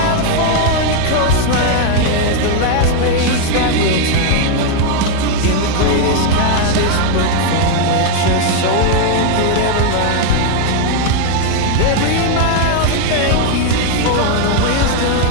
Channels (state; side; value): different; both; correlation 0.01